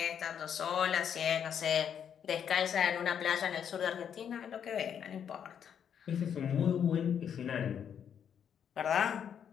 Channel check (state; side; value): quieter; right; 8.3 dB